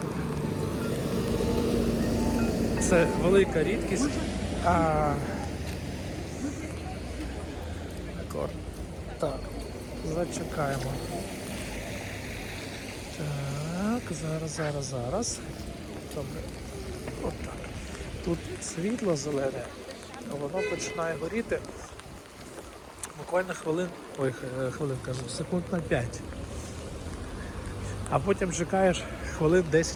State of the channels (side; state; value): both; identical; correlation 1.00